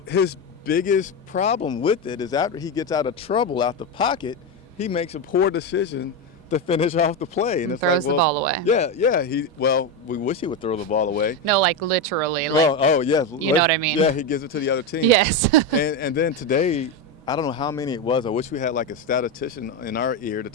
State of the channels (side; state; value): both; normal; correlation 0.12